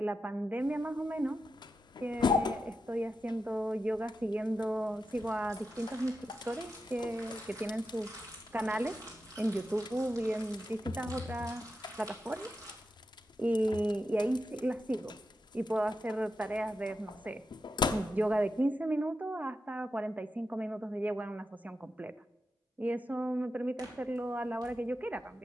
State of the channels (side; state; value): both; normal; correlation 0.88